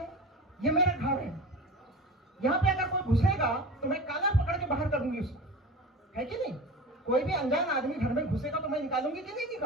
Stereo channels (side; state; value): both; normal; correlation 0.33